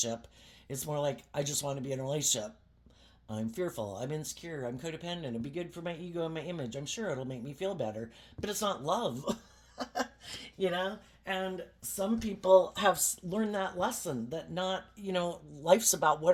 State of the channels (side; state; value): both; identical; correlation 1.00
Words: It's more like, I just want to be in a relationship. I'm fearful, I'm insecure, I'm codependent, it'll be good for my ego and my image. I'm sure it'll make me feel better, but it's not love. You know? And some people have learned that lesson that not, you know, life's about